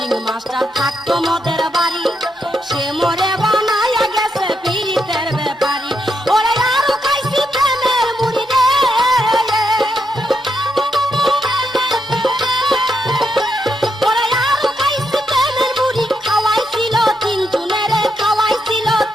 মাস্টার থাকতো মদের বাড়ি সে মরে বানায়া গেছে পীড়িতের ব্যাপারী ওরে আরো খাইছি প্রেমের মুড়ি রে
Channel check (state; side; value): normal; both; correlation 0.81